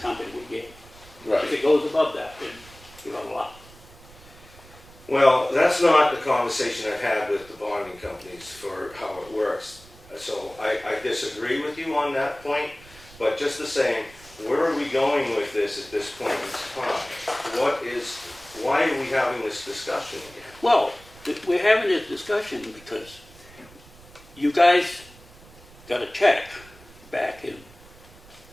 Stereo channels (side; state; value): right; noise; rumble, 22 dB below the sound